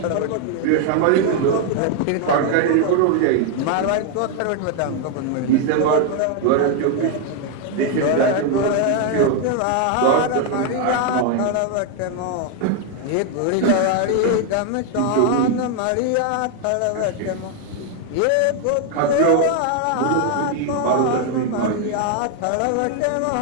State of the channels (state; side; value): different; both; correlation 0.01